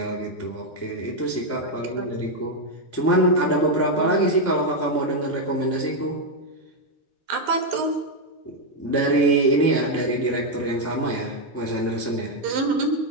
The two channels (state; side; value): normal; both; correlation 0.02